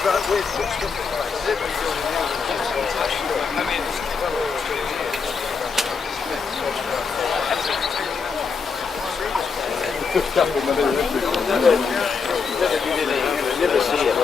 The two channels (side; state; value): right; quieter; 5.3 dB